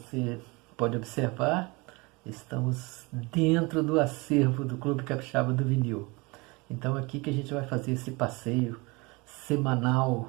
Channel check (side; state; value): left; quieter; 26.1 dB